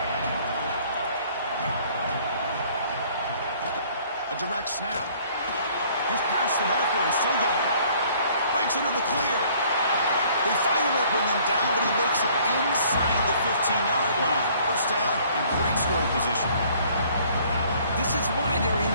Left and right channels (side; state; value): both; inverted; correlation -0.58